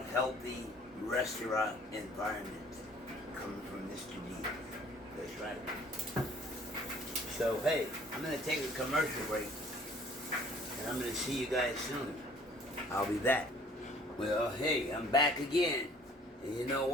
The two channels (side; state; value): both; normal; correlation 0.55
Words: healthy restaurant environment coming from Mr. D. That's right. So hey, I'm gonna take a commercial break, and I'm gonna see you guys soon. I'll be back. Well, hey, I'm back again. And you know